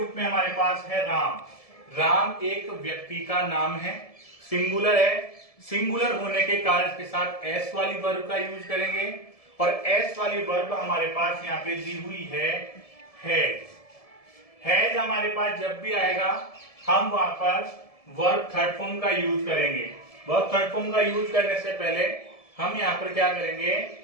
में हमारे पास है राम। राम एक व्यक्ति का नाम है, सिंगुलर है। सिंगुलर होने के कारण इसके साथ एस वाली वर्ब का यूज करेंगे, और एस वाली वर्ब हमारे पास यहाँ पे दी हुई है हैज। हैज हमारे पास जब भी आएगा हम वहां पर वर्ब थर्ड फॉर्म का यूज करेंगे। वर्ब थर्ड फॉर्म का यूज करने से पहले हम यहाँ पर क्या करेंगे,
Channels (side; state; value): right; late; 1.7 ms